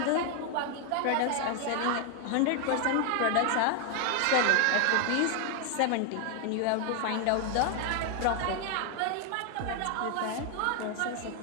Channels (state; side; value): different; both; correlation 0.01